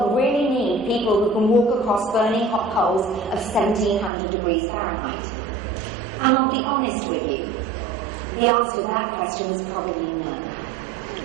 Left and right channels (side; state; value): left; drops out; at 4.1 s